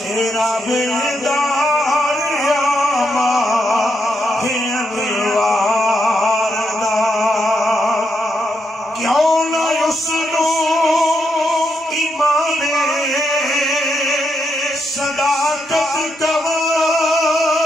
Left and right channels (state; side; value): normal; both; correlation 0.80